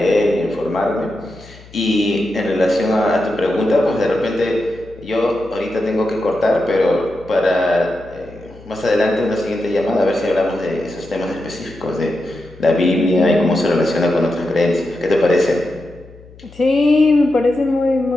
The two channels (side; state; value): left; noise; hum, 22 dB below the sound